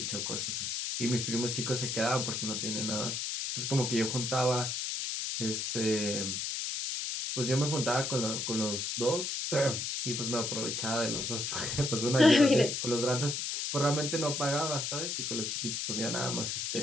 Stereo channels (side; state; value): left; noise; hiss, 2 dB below the sound